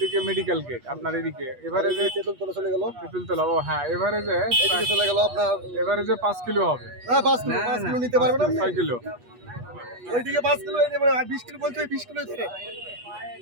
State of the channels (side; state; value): left; late; 8.3 ms